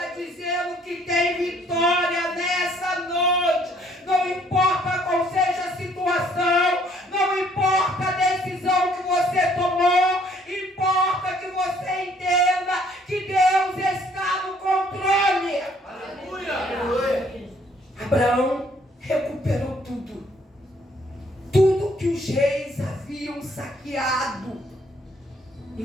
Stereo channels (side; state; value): both; normal; correlation 0.63